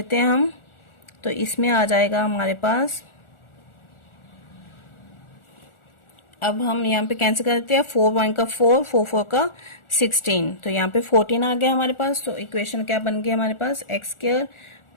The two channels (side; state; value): right; late; 1.4 ms